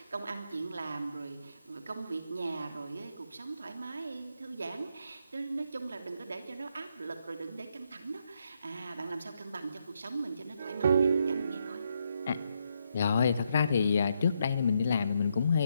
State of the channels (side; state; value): both; inverted; correlation -0.79